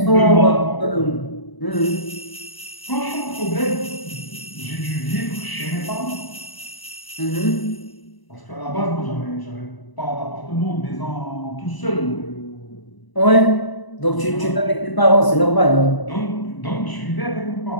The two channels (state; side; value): late; right; 1.0 ms